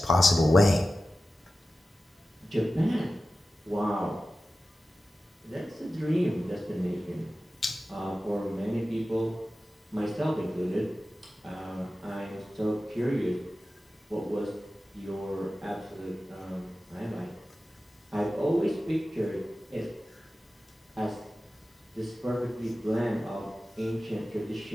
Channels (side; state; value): both; normal; correlation 0.94